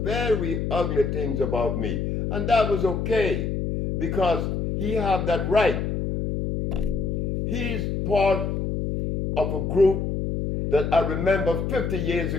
very ugly things about me. And that was okay, because he had that right. He's part of a group that I remember 50 years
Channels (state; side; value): noise; left; hum, 1 dB below the sound